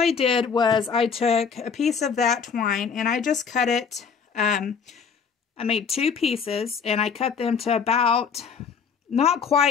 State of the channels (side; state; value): right; quieter; 6.3 dB